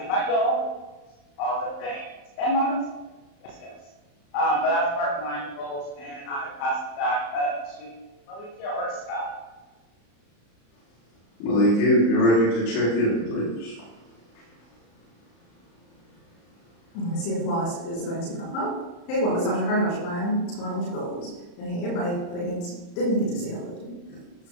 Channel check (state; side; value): late; right; 35 ms